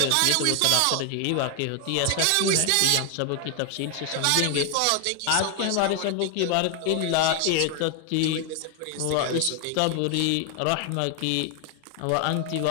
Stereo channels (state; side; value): different; both; correlation 0.01